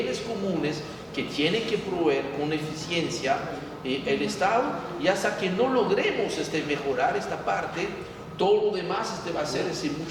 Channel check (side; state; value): both; identical; correlation 1.00